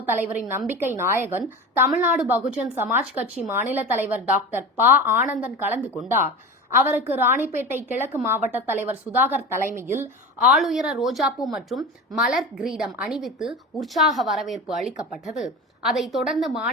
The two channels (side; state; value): both; normal; correlation 0.30